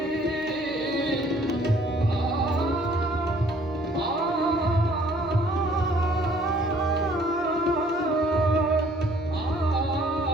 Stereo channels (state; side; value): normal; both; correlation 0.59